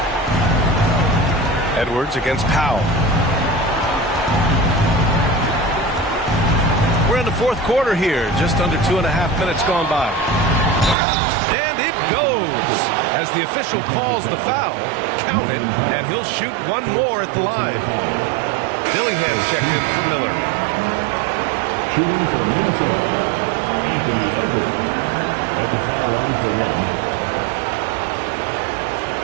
Edwards against Powell. We're in the fourth quarter here. Just under 2.5 minutes gone by. And it goes as the official calls the foul. Count it, and he'll shoot one more at the line. Dillingham checked in for Miller. Shooting for Minnesota, Anthony Edwards at the foul line for 1.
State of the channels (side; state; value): left; drops out; at 11.0 s